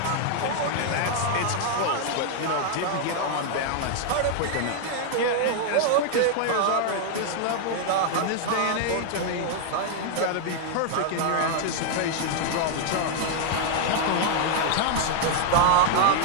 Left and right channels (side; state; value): both; different; correlation 0.00